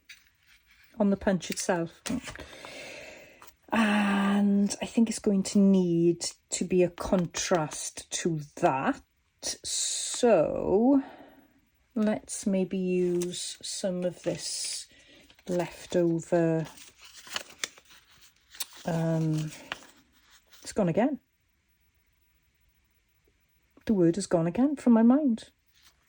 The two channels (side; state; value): both; identical; correlation 1.00